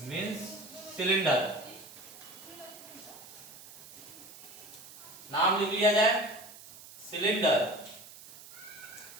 मींस सिलेंडर। नाम लिख लिया जाए, सिलेंडर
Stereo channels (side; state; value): right; noise; hiss, 17 dB below the sound